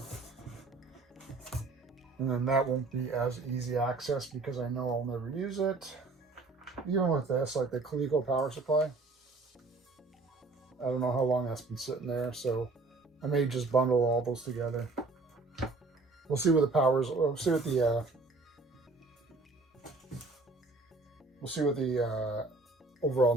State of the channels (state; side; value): quieter; left; 3.5 dB